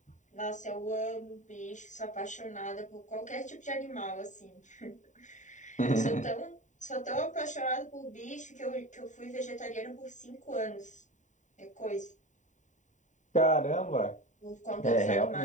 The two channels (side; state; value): right; late; 0.36 ms